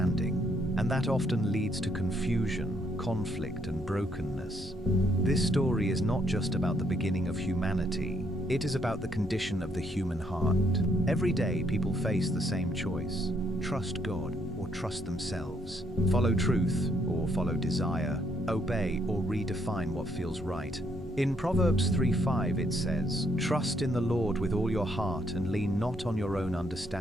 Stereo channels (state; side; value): normal; both; correlation 0.71